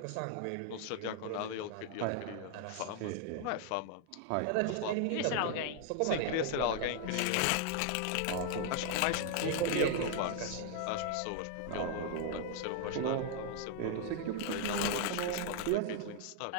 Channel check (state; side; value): different; both; correlation 0.00